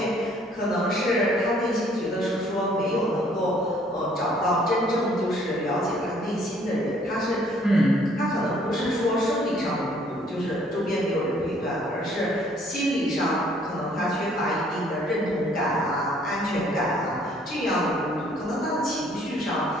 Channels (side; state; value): both; normal; correlation 0.61